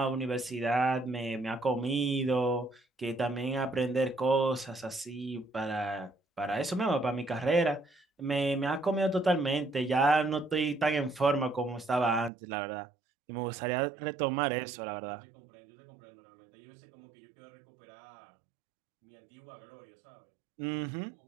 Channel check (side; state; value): left; drops out; at 12.3 s